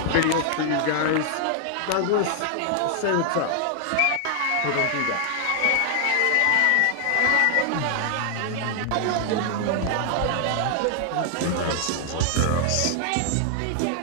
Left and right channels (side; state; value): both; different; correlation 0.00